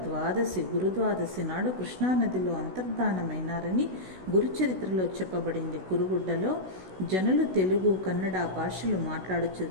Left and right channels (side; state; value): left; late; 16 ms